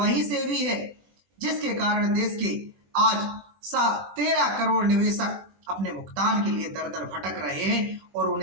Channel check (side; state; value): left; late; 20 ms